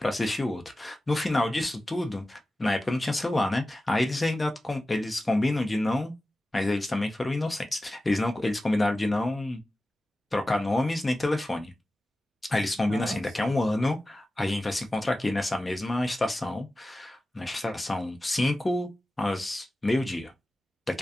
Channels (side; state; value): both; normal; correlation 0.95